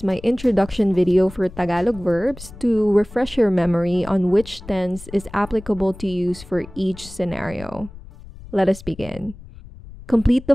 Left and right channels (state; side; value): noise; left; rumble, 17 dB below the sound